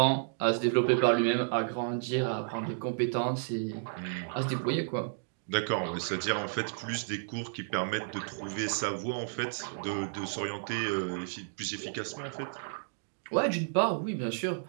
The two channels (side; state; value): left; silent; digital silence